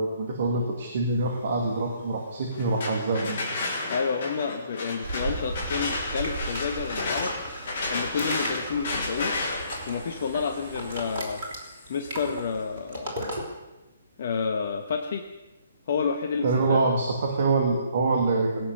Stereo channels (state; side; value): inverted; both; correlation -0.64